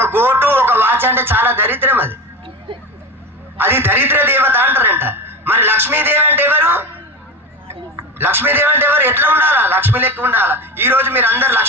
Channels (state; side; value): normal; both; correlation 0.24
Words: గోటు ఒక వాచ్ అంటే చాలా దరిద్రం. అది దరిద్ర దేవత అంటారంట. మరి లక్ష్మీదేవి అంటే ఎవరు, లక్ష్మీదేవి అంటే ఎవరు, ఎట్లా ఉండాలా, లక్ష్మి లెక్క ఉండాలా. ఈ రోజు మీరు అందరు